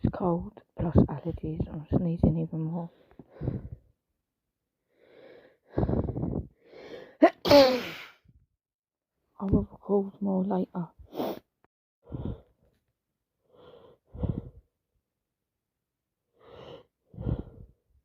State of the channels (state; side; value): identical; both; correlation 1.00